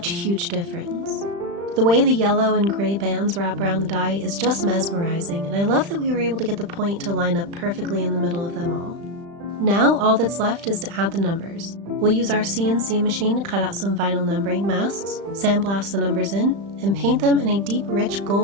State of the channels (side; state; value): left; late; 35 ms